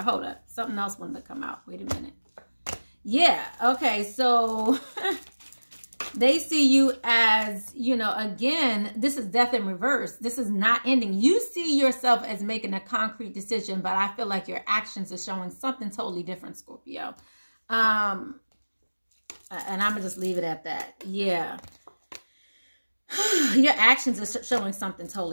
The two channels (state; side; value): inverted; both; correlation -1.00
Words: Hold up. Something else wanted to come out. Wait a minute. Yeah. Okay. So... They see you as, you know, again, this is death in reverse. This is not ending. You see yourself as making a concrete decision, but I feel like your actions are showing something totally different, Scorpio. And I'm going to just leave it at that. Yeah. Your actions are showing something